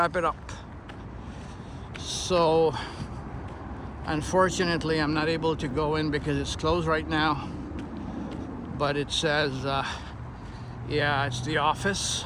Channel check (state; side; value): identical; both; correlation 1.00